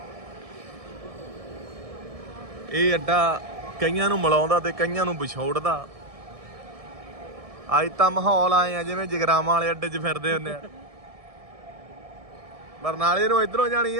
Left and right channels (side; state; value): left; late; 1.6 ms